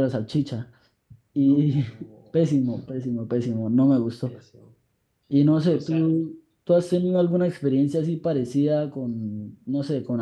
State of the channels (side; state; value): both; identical; correlation 1.00